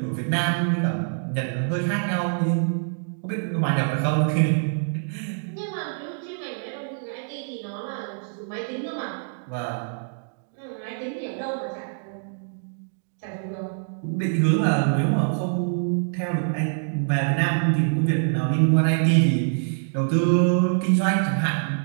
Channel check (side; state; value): left; silent; digital silence